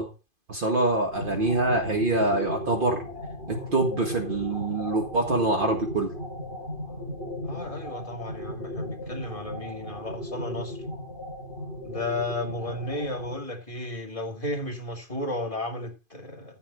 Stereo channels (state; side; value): late; left; 2.5 ms